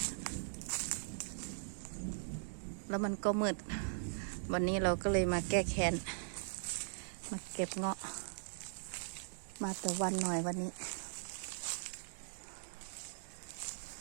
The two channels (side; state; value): left; silent; digital silence